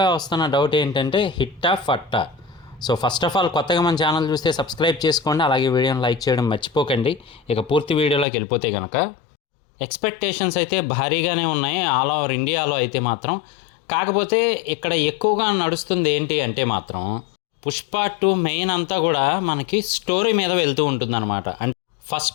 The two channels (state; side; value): drops out; right; at 8.2 s